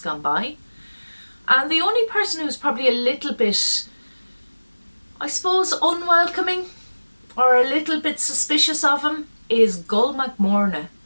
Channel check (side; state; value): both; inverted; correlation -1.00